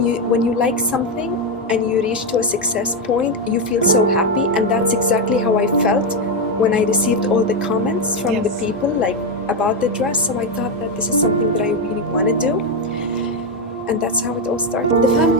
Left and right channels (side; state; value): both; normal; correlation 0.06